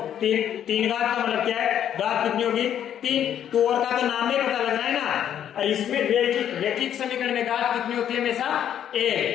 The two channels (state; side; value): quieter; right; 9.9 dB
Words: 3 3 घात का मतलब क्या है? घात कितनी होगी? 3। तो और का तो नाम में पता लग रहा है ना। और इसमें रैखिक समीकरण में घात कितनी होती है? हमेशा